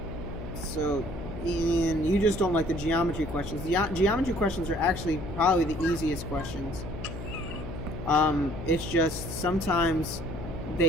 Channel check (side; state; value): left; noise; hum, 9 dB below the sound